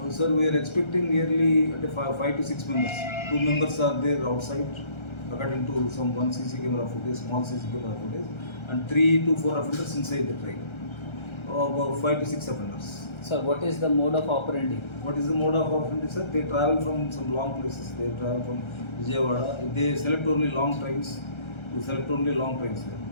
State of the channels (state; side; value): late; right; 1.3 ms